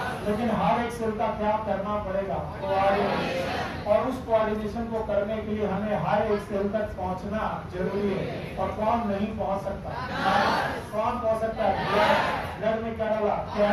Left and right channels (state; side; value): identical; both; correlation 1.00